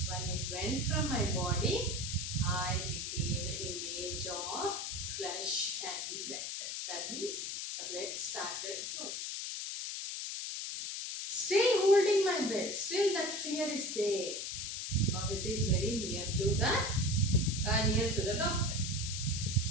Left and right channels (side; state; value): left; noise; hiss, 4 dB below the sound